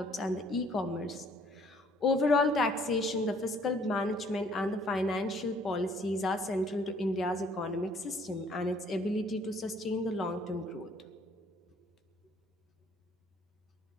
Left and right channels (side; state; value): both; normal; correlation 0.61